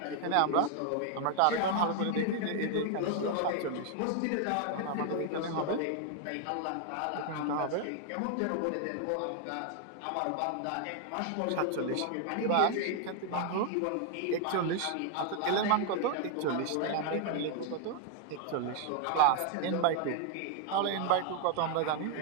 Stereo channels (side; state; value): both; different; correlation 0.00